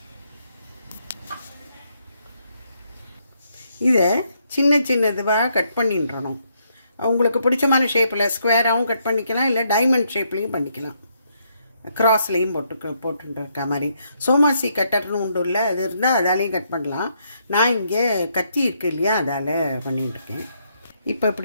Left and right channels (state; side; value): inverted; both; correlation -0.75